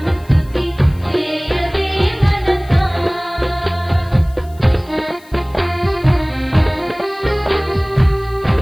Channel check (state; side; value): noise; left; hiss, 27 dB below the sound